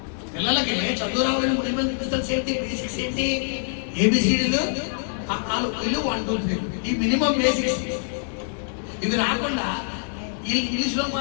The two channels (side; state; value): right; silent; digital silence